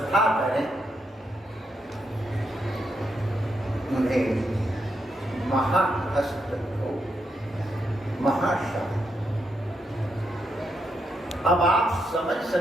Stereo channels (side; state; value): both; normal; correlation 0.81